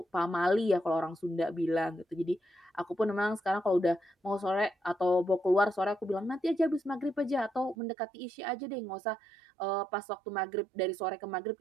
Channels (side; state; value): left; drops out; at 7.8 s